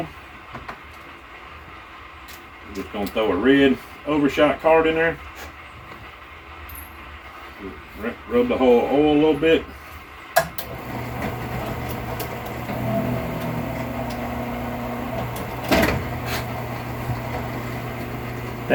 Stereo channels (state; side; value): identical; both; correlation 1.00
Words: I'm just going to throw a red overshot card in there. Rub the whole oil a little bit.